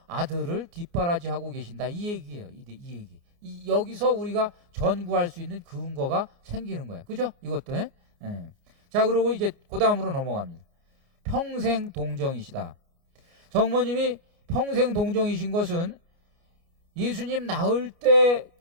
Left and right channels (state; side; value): late; left; 29 ms